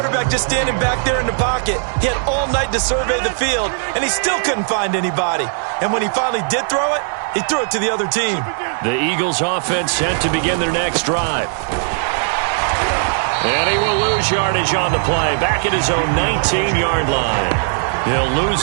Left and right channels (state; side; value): silent; left; digital silence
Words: just standing back there in the pocket. He had all night to survey the field, and he still couldn't find anybody. And when he finally did throw it, he threw it to the other team. The Eagles offense set to begin their next drive. And he will lose yardage on the play, back at his own 19-yard line. He'll lose